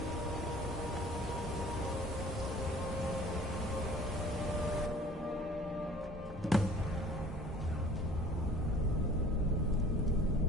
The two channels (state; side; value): normal; both; correlation 0.50